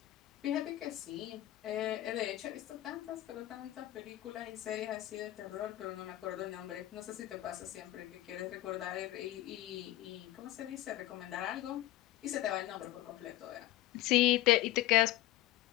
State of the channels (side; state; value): right; quieter; 16.0 dB